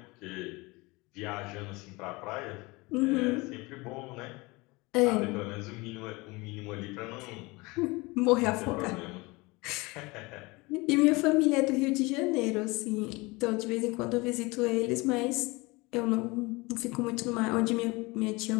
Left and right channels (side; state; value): right; quieter; 24.3 dB